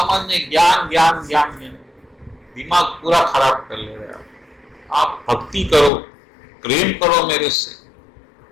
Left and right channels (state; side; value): drops out; right; at 5.9 s